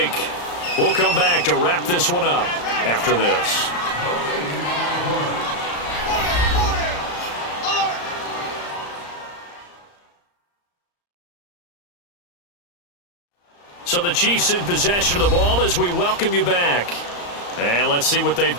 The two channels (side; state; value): right; late; 34 ms